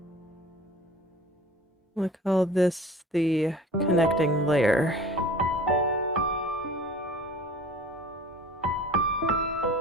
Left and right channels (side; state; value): both; normal; correlation 0.44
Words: We'll call this the connecting layer.